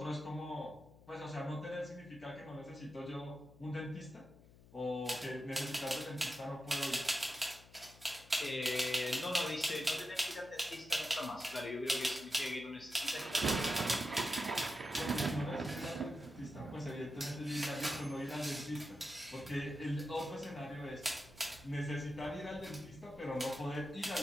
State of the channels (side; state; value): left; noise; hum, 22 dB below the sound